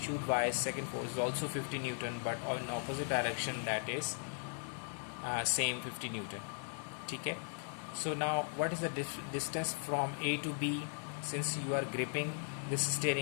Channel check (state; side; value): silent; right; 52 dB below the other